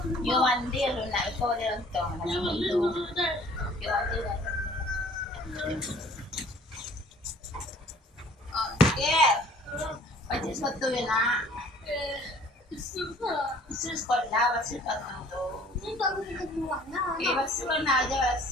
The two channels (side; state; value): both; normal; correlation 0.53